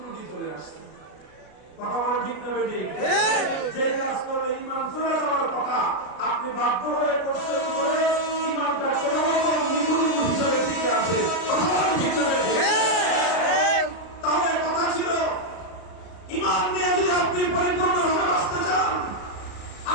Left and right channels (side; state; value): right; late; 33 ms